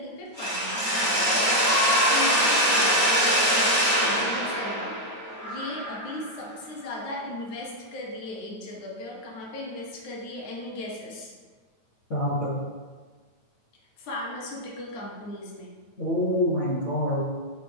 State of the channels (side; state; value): right; late; 9.2 ms